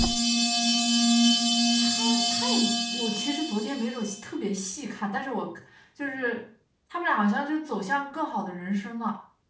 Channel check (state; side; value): identical; both; correlation 1.00